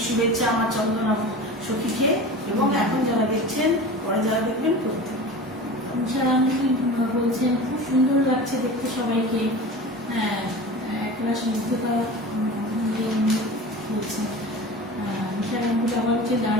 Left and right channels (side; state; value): both; normal; correlation 0.34